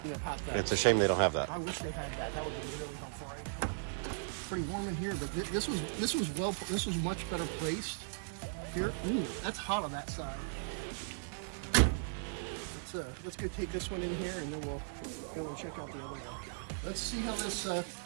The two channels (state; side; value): silent; left; digital silence